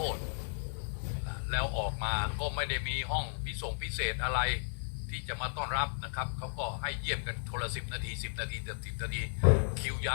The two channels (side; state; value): right; silent; 55 dB below the other